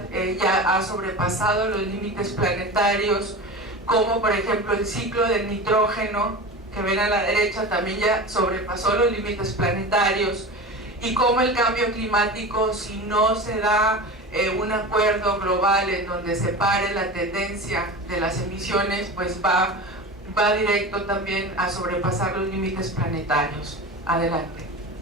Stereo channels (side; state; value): both; normal; correlation 0.30